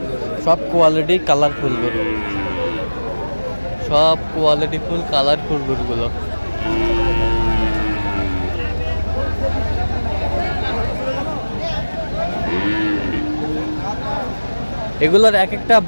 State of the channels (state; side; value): inverted; both; correlation -1.00